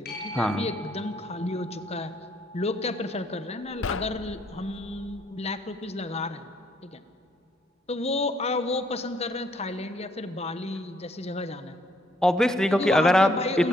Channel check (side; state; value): both; normal; correlation 0.67